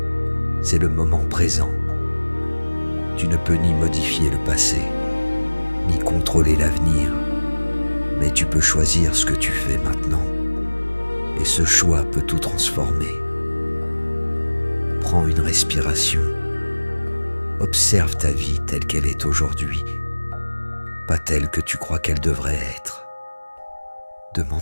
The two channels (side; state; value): both; inverted; correlation -1.00